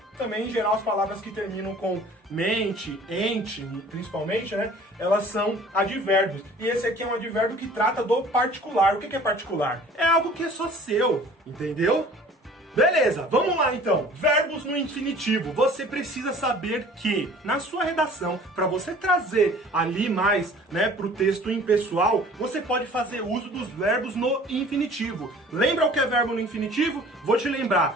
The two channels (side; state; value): both; normal; correlation 0.49